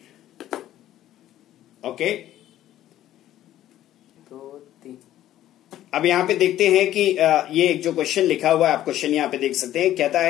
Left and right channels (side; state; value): right; quieter; 13.0 dB